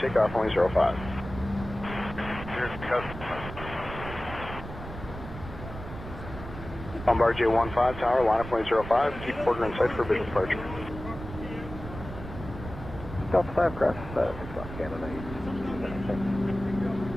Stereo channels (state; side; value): noise; right; rumble, 11 dB below the sound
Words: only 05. Bombardier 15 tower, line up only 05, keep quarter in sight for business departure. Delta 5 cross 6 Canada.